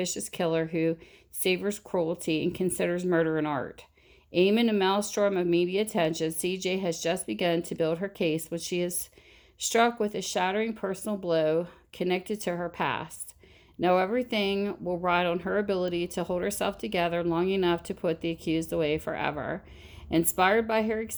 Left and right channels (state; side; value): identical; both; correlation 1.00